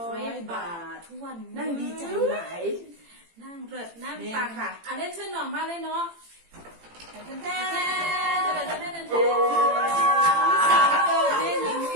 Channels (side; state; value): left; late; 18 ms